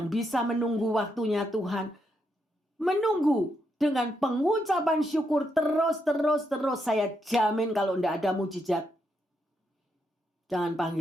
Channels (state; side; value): normal; both; correlation 0.80